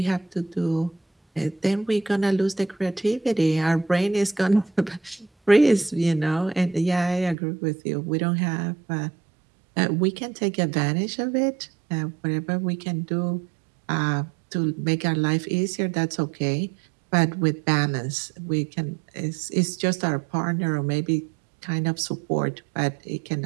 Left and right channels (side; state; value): left; drops out; at 7.4 s